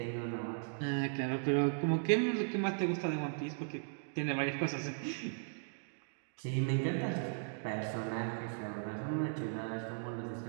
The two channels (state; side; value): silent; left; digital silence